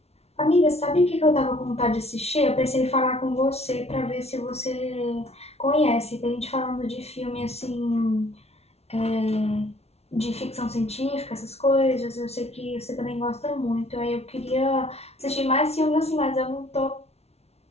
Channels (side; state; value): right; late; 0.31 ms